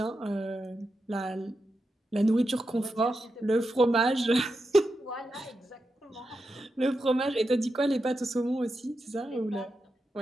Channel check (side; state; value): both; normal; correlation 0.88